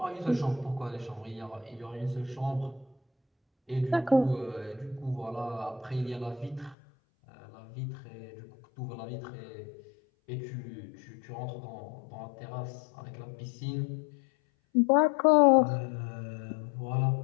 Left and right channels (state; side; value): drops out; right; at 6.8 s